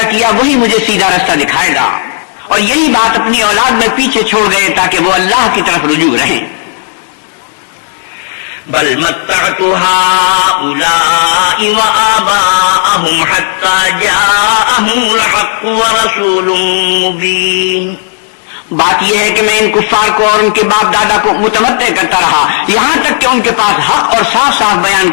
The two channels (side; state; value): right; silent; digital silence